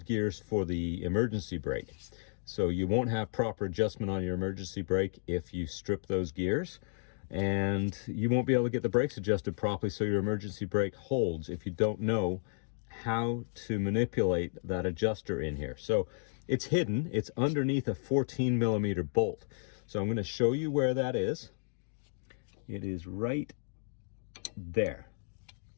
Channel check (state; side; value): silent; right; 56 dB below the other